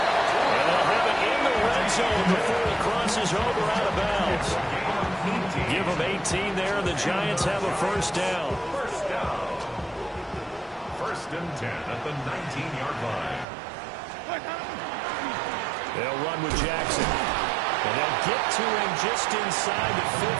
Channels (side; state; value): left; drops out; at 13.5 s